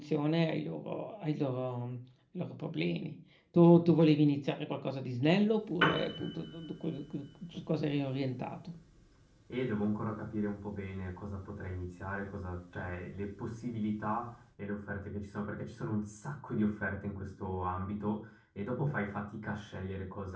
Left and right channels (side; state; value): both; identical; correlation 1.00